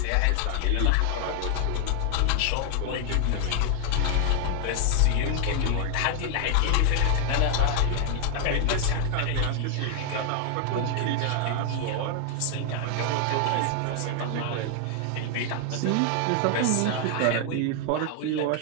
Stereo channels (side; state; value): both; different; correlation 0.00